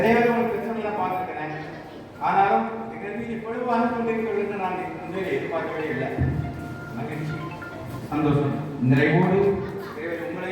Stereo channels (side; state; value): both; identical; correlation 1.00